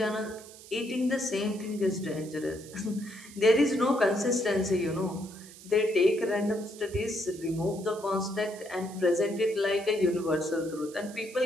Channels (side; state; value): right; noise; hiss, 19 dB below the sound